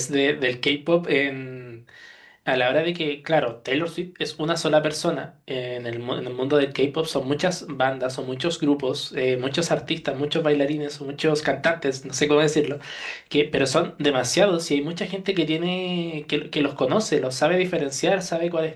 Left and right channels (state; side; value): identical; both; correlation 1.00